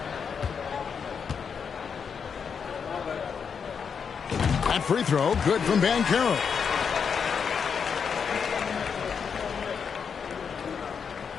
That free throw, good from Banchero.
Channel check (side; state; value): right; quieter; 6.5 dB